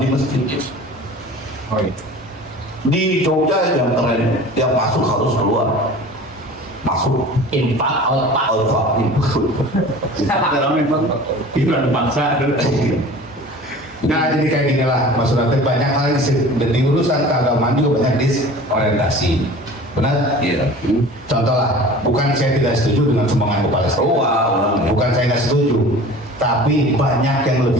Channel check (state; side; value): normal; both; correlation 0.41